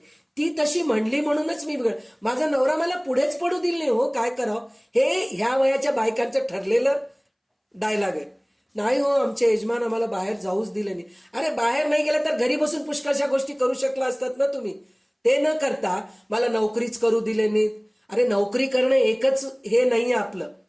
ती तशी म्हणली म्हणूनच मी बिघड, माझा नवरा मला पुढेच पडू दिल नाही, हो काय करावं, हे ह्या वयाच्या बायकांचं ठरलेलं डायलॉग आहे. नाही हो आमचे यजमान आम्हाला बाहेर जाऊच दिले नाही. अरे बाहेर नाही गेलं तर घरी बसून पुष्कळशा गोष्टी करू शकला असतात ना तुम्ही. ते न करता मला नोकरीच करू दिले नाहीत. अरे नोकरी करणं एकच हे नाहीये आपलं.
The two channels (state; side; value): identical; both; correlation 1.00